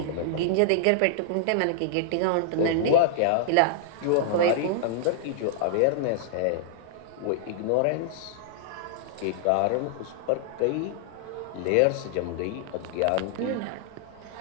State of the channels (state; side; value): different; both; correlation -0.01